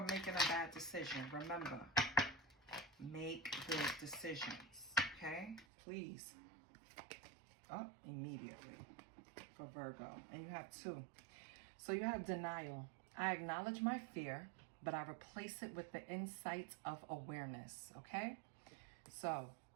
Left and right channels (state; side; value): drops out; left; at 5.7 s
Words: making a bad decision. Remember, make good decisions. Okay? Please. Oh, immediately. For Virgo. And you have 2. So you have denial. I acknowledge my fear, but I replace it with the insight of awareness. Okay? So,